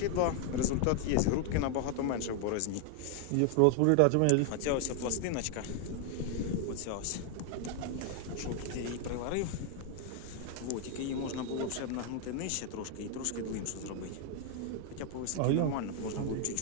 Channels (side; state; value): both; different; correlation 0.00